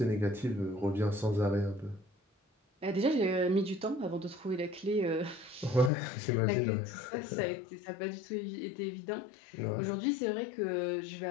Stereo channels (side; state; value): right; drops out; at 5.9 s